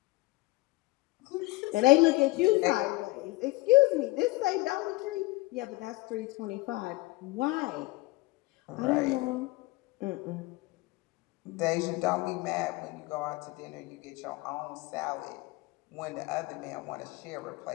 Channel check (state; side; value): quieter; right; 21.8 dB